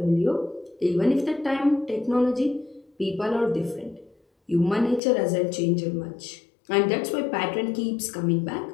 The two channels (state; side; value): drops out; right; at 5.0 s